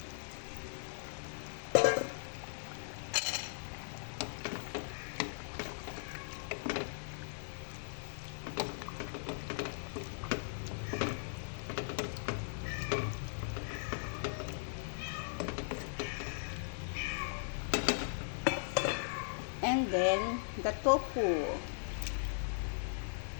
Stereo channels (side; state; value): right; silent; 52 dB below the other